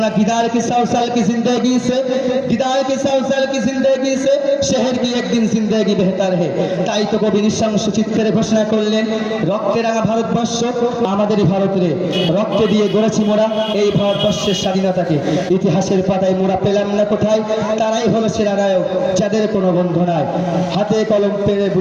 गिदार की 100 साल की जिंदगी से शहर की एक दिन जिंदगी बेहतर है। তাই তো কবি নিঃশংস চিত্রে ঘোষণা করলেন, রক্তে রাঙা ভারতবর্ষ আমাদেরই ভারত রে, রক্তে দিয়ে গড়েছি মোরা এই ভারতবর্ষের স্বাধীনতাকে, ইতিহাসের পাতায় মোরা পেলাম না কোথায়, তারাই হলো সেরা নায়ক যাদের কোনো বন্ধু নাই, হাতে কলম পেরে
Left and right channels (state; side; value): identical; both; correlation 1.00